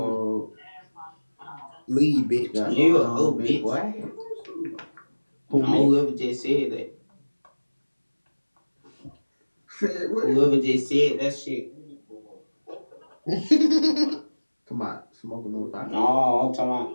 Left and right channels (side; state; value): both; inverted; correlation -1.00